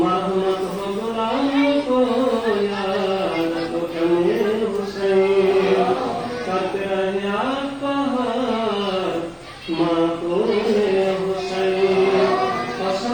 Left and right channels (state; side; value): identical; both; correlation 1.00